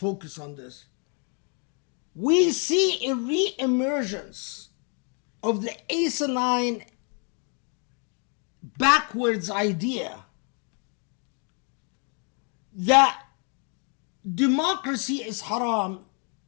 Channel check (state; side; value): quieter; right; 38.8 dB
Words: on this. We see a re-emergence of the asinine backwards idea that democracy is haram,